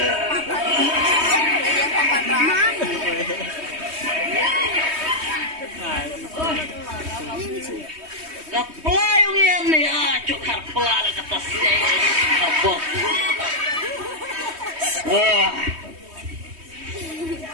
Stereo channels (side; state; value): left; late; 3.2 ms